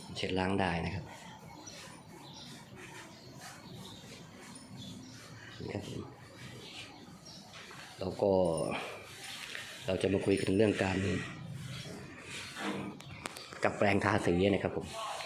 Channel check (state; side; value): identical; both; correlation 1.00